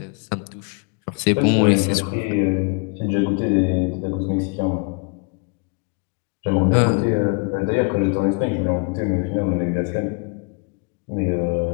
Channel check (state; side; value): quieter; right; 33.9 dB